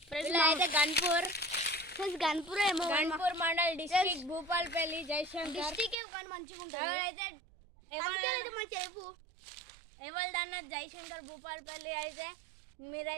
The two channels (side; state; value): left; drops out; at 6.0 s